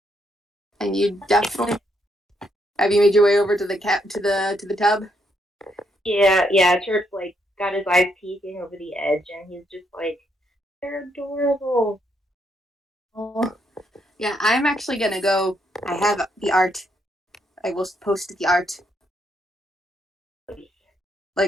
And you definitely have you made your way over to the tub? Yeah. Turp's like got his eyes peeking over the edge, and he's just like, they're adorable. Oh. Yeah, I'm actually gonna go. I have the art. I will post the art,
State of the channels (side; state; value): both; normal; correlation 0.75